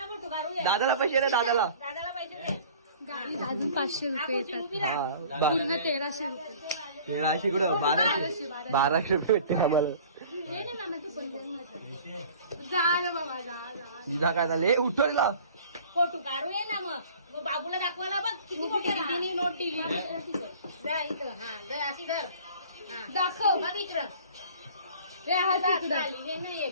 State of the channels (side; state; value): both; inverted; correlation -0.47